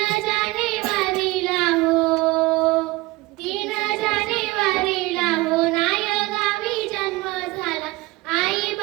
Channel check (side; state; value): left; quieter; 21.1 dB